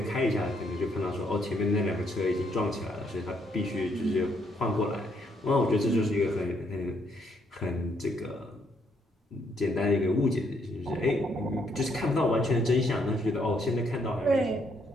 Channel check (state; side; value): normal; both; correlation 0.73